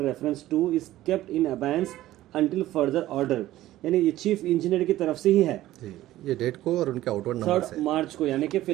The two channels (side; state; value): left; quieter; 15.0 dB